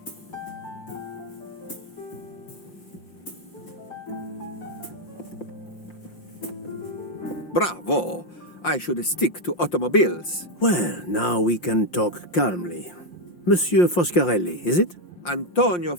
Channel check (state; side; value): late; right; 5.7 ms